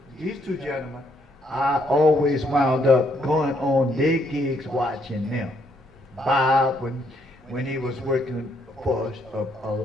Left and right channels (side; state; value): both; normal; correlation 0.72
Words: these two gentlemen, I always wound up going on their gigs watching them. Bob, when he was working for